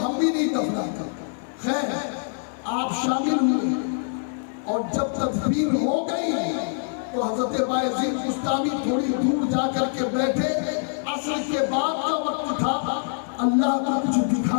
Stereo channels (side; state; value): right; silent; 62 dB below the other